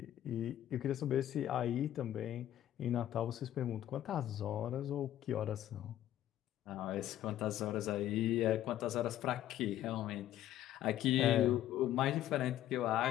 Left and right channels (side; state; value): right; quieter; 12.4 dB